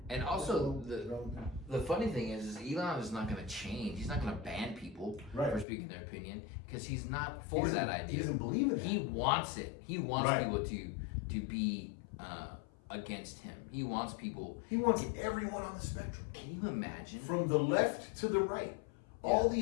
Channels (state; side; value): drops out; right; at 5.7 s